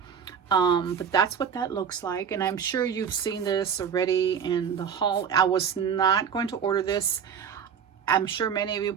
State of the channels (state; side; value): quieter; left; 7.4 dB